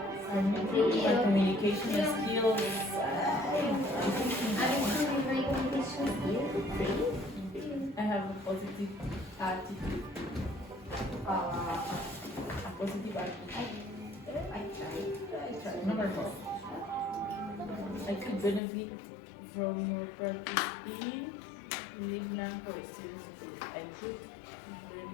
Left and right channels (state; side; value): drops out; right; at 18.6 s